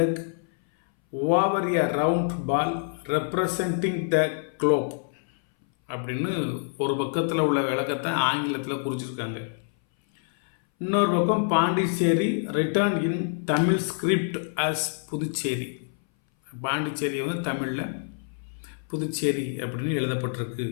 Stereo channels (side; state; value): right; silent; 59 dB below the other